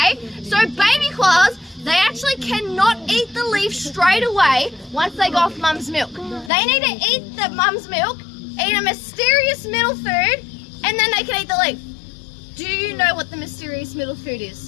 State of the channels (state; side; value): drops out; right; at 6.5 s